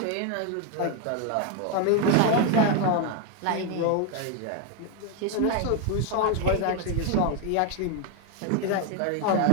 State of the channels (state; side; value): different; both; correlation 0.01